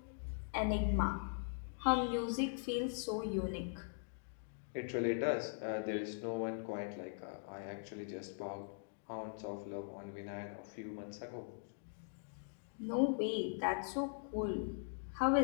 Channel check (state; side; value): silent; right; digital silence